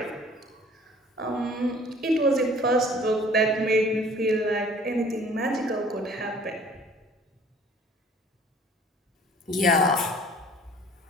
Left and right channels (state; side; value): normal; both; correlation 0.52